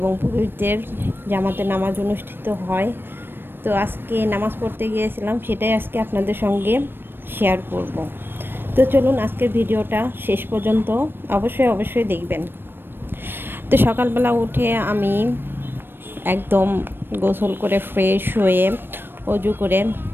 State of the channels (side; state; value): left; late; 0.099 ms